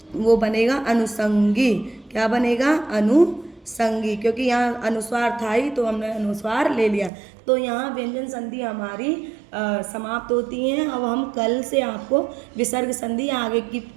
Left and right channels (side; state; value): left; drops out; at 7.1 s